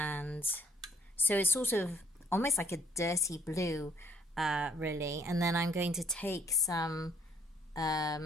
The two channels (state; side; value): normal; both; correlation 0.63